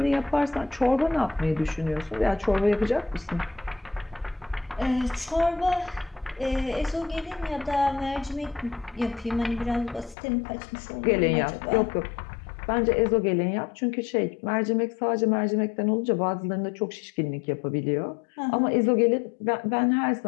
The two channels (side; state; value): right; drops out; at 10.2 s